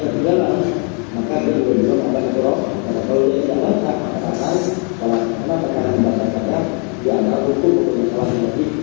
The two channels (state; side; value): quieter; right; 36.5 dB